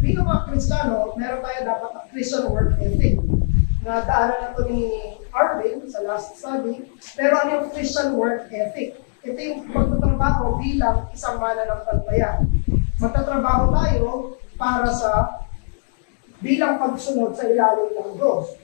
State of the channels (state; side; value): silent; right; digital silence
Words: mga Kristiyano, meron tayo dapat ang Christian work ethic. Na daanan na ito ni Arvin sa last study. Pero ano yung Christian work ethic? Ito yung pagtatrabaho bilang isang mananampalataya. Magtatrabaho tayo para sa bilang pagsunod sa ilalim ng Diyos.